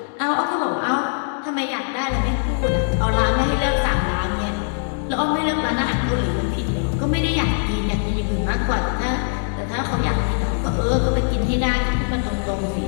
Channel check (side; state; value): right; silent; digital silence